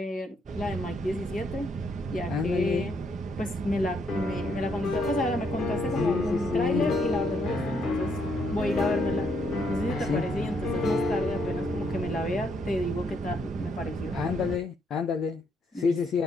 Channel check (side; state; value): both; normal; correlation 0.73